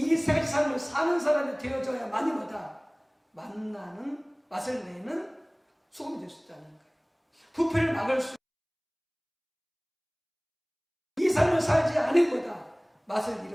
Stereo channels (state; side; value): identical; both; correlation 1.00